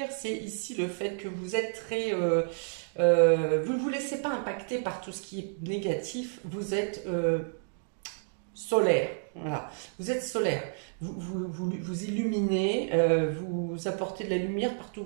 c'est ici le fait que vous êtes très... vous ne vous laissez pas impacter par tout ce qui est négatif, vous êtes solaire. Voilà. Vous êtes solaire. Vous illuminez, vous apportez de la lumière partout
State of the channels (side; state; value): left; silent; digital silence